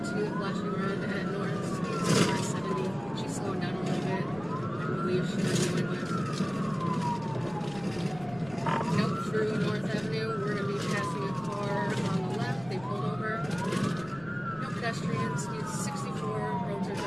to the flashing red at north. Speeds are 70. She's slowing down a little bit. I believe she might be going west. Nope, through North Avenue. We're going to be passing a car on the left. They pulled over. No pedestrians. Speeds 64. Roads are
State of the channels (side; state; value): left; noise; rumble, 19 dB below the sound